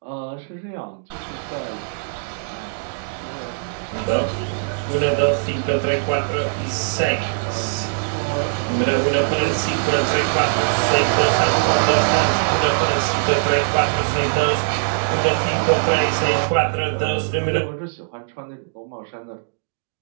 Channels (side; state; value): left; silent; digital silence